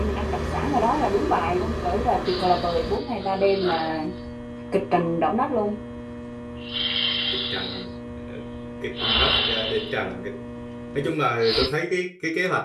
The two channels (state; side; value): identical; both; correlation 1.00